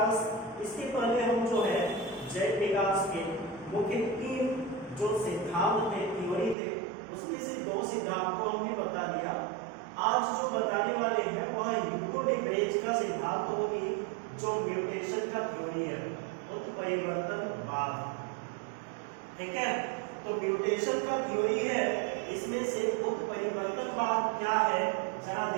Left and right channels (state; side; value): drops out; left; at 6.6 s